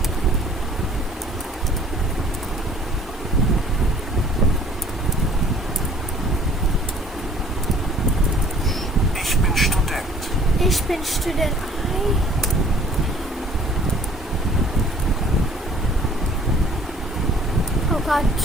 Ich bin Student. Ich bin Student. Oh God,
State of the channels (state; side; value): normal; both; correlation 0.54